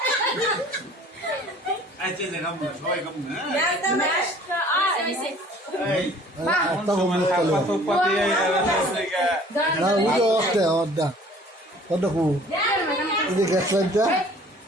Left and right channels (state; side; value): normal; both; correlation 0.51